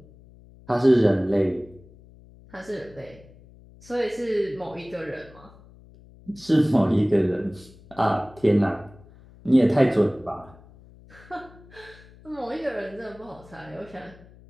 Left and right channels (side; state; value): left; noise; hum, 23 dB below the sound